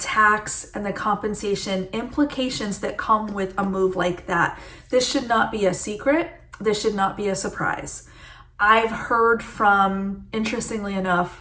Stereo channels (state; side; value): identical; both; correlation 1.00